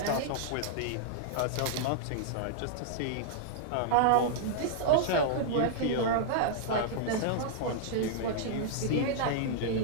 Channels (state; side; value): different; both; correlation -0.01